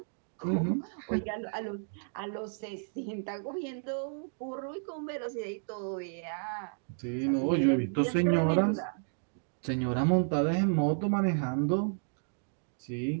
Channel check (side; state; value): left; silent; digital silence